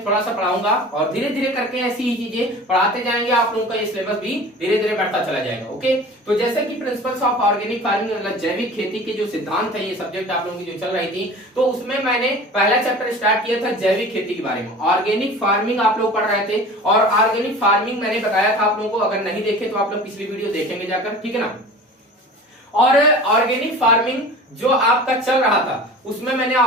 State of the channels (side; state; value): both; normal; correlation 0.39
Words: थोड़ा सा पढ़ाऊंगा और धीरे धीरे करके ऐसी ही चीजें पढ़ाते जाएंगे। आप लोगों का ये सिलेबस भी धीरे धीरे बढ़ता चला जाएगा। ओके, तो जैसे कि प्रिंसिपल्स ऑफ ऑर्गेनिक फार्मिंग मतलब जैविक खेती के जो सिद्धांत है, ये सब्जेक्ट आप लोगों की जो चल रही थी, तो उसमें मैंने पहला चैप्टर स्टार्ट किया था जैविक खेती के बारे में। ऑर्गेनिक फार्मिंग आप लोग पढ़ रहे थे और ऑर्गेनिक फार्मिंग मैंने बताया था आप लोगों को, अगर नहीं देखे तो आप लोग पिछली वीडियो देखेंगे जाकर, ठीक है ना। और ऑर्गेनिक फार्मिंग जो आपका चल रहा था उसमें मैंने